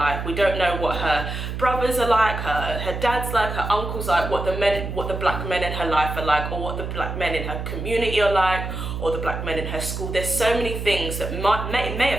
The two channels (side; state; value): right; noise; hum, 5 dB below the sound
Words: We don't know what her brothers are like, her dad's like, her uncles like, what the black men in her life are like, or what the black men in her community are like, or the black men in her school. There's so many things that may